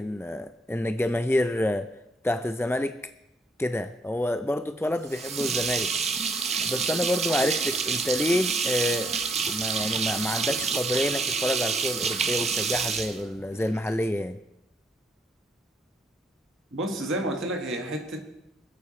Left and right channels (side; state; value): both; normal; correlation 0.70